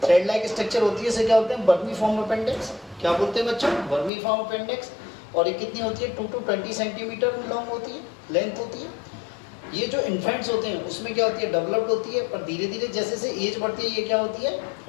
थ्रेड लाइक स्ट्रक्चर होती है, इसे क्या बोलते हैं, वर्मीफॉर्म अपेंडिक्स। क्या बोलते हैं बच्चों, वर्मीफॉर्म अपेंडिक्स। और ये कितनी होती है, 2 to 20 सेंटीमीटर लॉन्ग होती है, लेंथ होती है। ये जो इन्फेंट्स होते हैं उसमें क्या होती है, डेवलप्ड होती है, पर धीरे धीरे जैसे जैसे एज बढ़ती है ये क्या होती है,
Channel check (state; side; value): drops out; right; at 4.1 s